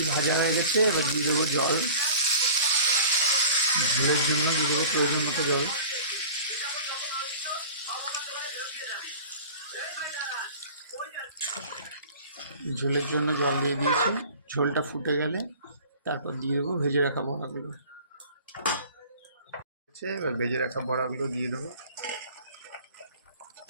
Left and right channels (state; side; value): inverted; both; correlation -0.43